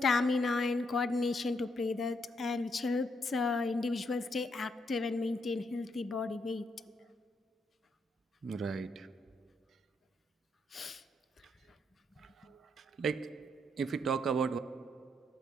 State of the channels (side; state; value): both; normal; correlation 0.77